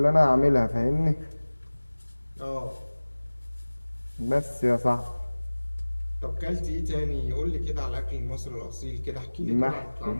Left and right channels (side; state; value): both; inverted; correlation -1.00